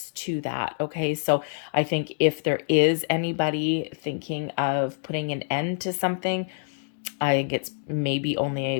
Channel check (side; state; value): right; silent; digital silence